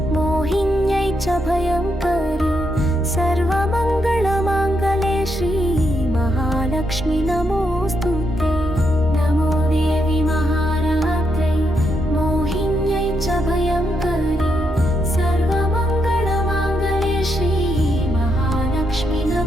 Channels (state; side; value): normal; both; correlation 0.80